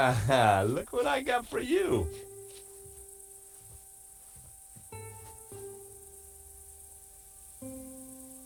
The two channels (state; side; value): identical; both; correlation 1.00